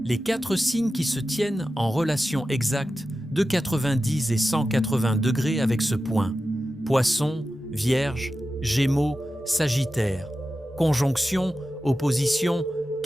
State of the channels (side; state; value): both; normal; correlation 0.93